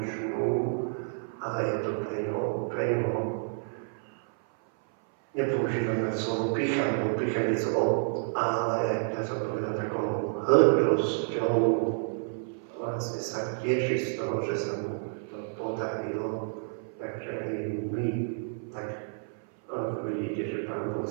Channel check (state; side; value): silent; left; 57 dB below the other